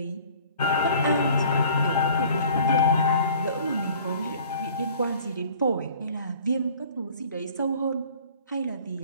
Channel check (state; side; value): inverted; both; correlation -0.49